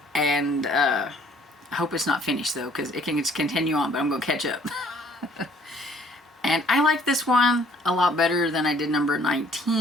And I hope it's not finished, though, because it can just continue on, but I'm going to catch up. And I like this one a lot better than I did number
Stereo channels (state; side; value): normal; both; correlation 0.59